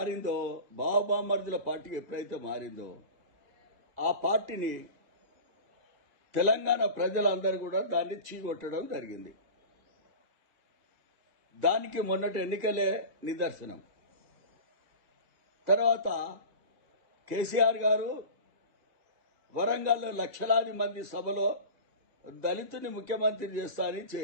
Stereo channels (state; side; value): late; left; 2.0 ms